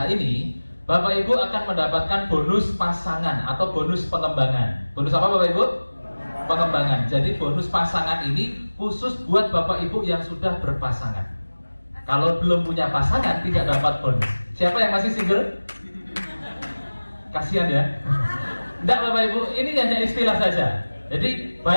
ini, Bapak Ibu akan mendapatkan bonus pasangan atau bonus pengembangan. Bonus apa Bapak Ibu? Pengembangan. Jadi bonus pasangan ini khusus buat Bapak Ibu yang sudah berpasangan. Kalau belum punya pasangan tidak dapat bonus. Siapa yang masih single? Kasihan ya. Enggak Bapak Ibu, ini hanya istilah saja. Jadi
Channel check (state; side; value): inverted; both; correlation -1.00